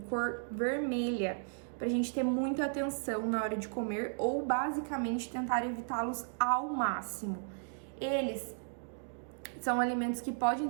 cor vermelha, pra gente ter muita atenção na hora de comer ou basicamente tentar evitá-los ao máximo. Eles são alimentos que podem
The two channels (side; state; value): left; silent; digital silence